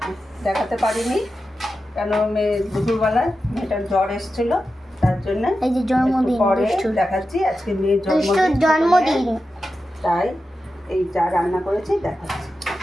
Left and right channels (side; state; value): both; normal; correlation 0.91